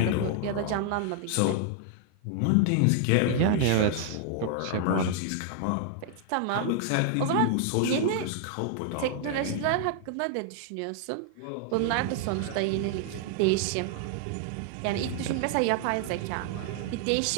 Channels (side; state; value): both; different; correlation 0.00